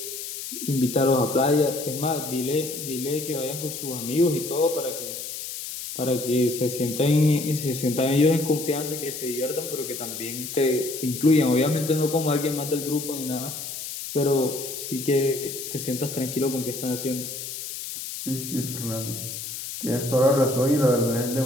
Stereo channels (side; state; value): left; noise; hiss, 8 dB below the sound